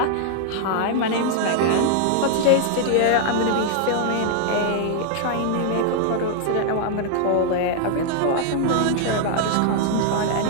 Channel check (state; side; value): different; both; correlation 0.00